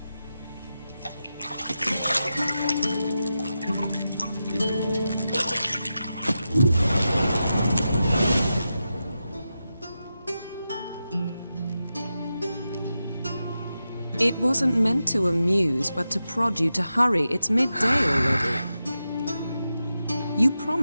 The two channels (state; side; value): inverted; both; correlation -0.90